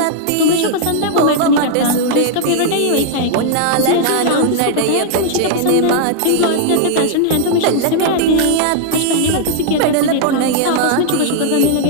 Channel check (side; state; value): both; different; correlation -0.01